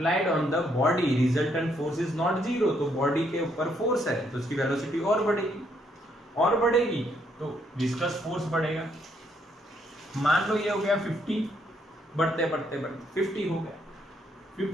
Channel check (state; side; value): normal; both; correlation 0.72